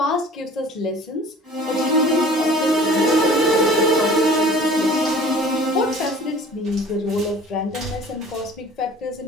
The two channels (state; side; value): normal; both; correlation 0.47